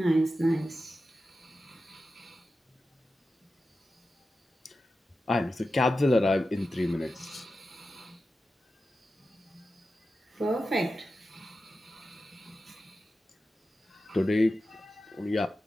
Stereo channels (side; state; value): both; normal; correlation 0.92